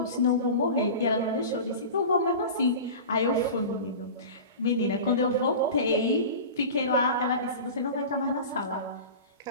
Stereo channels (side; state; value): both; inverted; correlation -0.33